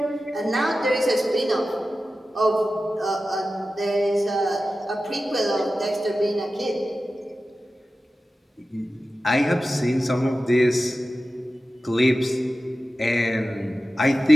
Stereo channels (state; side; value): normal; both; correlation 0.94